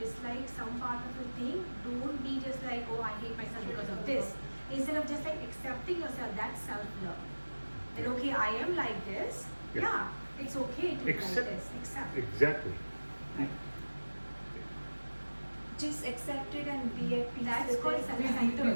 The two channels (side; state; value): both; inverted; correlation -1.00